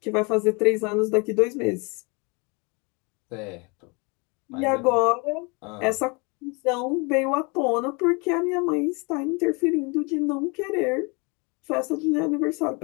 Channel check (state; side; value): quieter; right; 30.2 dB